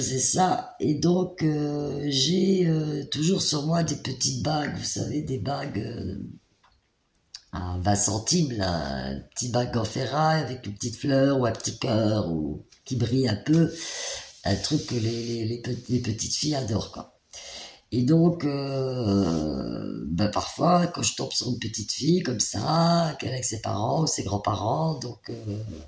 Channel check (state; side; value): identical; both; correlation 1.00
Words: ça. Et donc j'ai toujours sur moi des petites bagues, vous savez, des bagues à 20 centimes, là, un petit bague en ferraille avec une petite fleur ou un petit cœur ou qui brille un peu. Un truc que les petites filles adorent, quoi. Et donc, ben parfois, quand je tombe sur une petite fille comme ça, qu'elle est avec ses parents ou ses grands-parents, donc